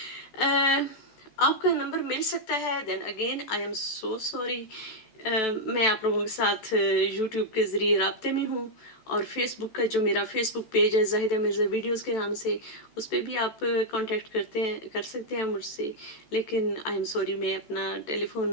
آپ کا نمبر مل سکتا ہے. Then again I am so sorry. میں آپ لوگوں کے ساتھ یوٹیوب کے ذریعے رابطے میں ہوں، اور فیس بک کا جو میرا فیس بک پیج ہے زاہدہ مرزا ویڈیوز کے نام سے، اس پہ بھی آپ کانٹیکٹ کر سکتے ہیں مجھ سے. لیکن آئی ایم سوری، میں اپنا ٹیلی فون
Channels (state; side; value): late; right; 14 ms